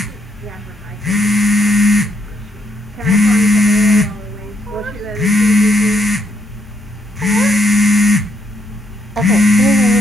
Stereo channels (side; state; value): both; normal; correlation 0.74